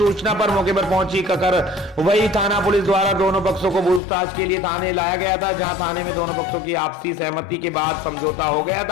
पर मौके पर पहुंची ककरवई थाना पुलिस द्वारा दोनों पक्षों को पूछताछ के लिए थाने लाया गया था, जहां थाने में दोनों पक्षों की आपसी सहमति के बाद समझौता हो गया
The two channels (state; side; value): drops out; right; at 4.0 s